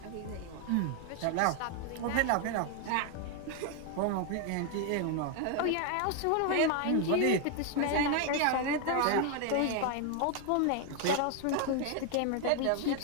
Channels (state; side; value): different; both; correlation 0.01